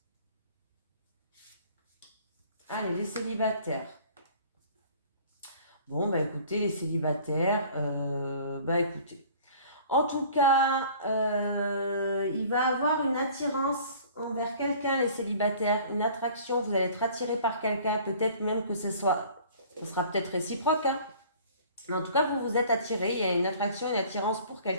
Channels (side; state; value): both; inverted; correlation -0.49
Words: Allez, les célibataires. Bon, bah écoutez, les célibataires, écoutez. En tout cas, il va avoir une attirance envers quelqu'un, les célibataires, une attraction, vous allez être attiré par quelqu'un, peut-être même que ce sera peut-être réciproque, hein. Mais en tout cas, vous vous êtes attiré, il y a une attraction, une attirance pour